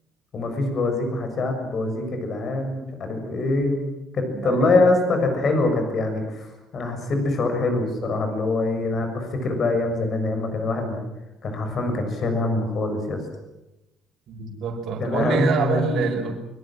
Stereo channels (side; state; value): both; normal; correlation 0.69